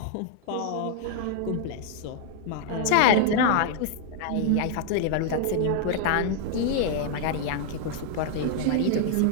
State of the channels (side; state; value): both; different; correlation 0.00